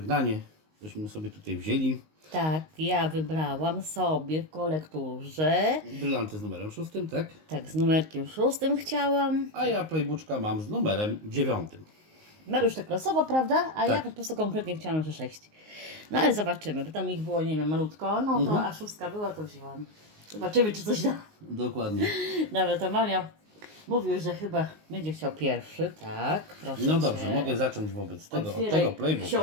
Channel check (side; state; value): left; late; 19 ms